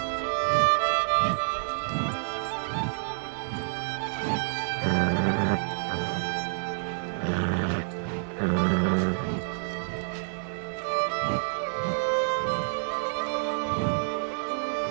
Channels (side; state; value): left; silent; 59 dB below the other